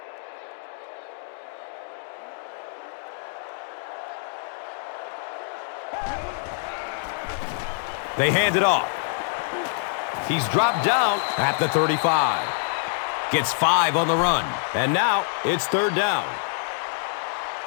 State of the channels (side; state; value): right; silent; digital silence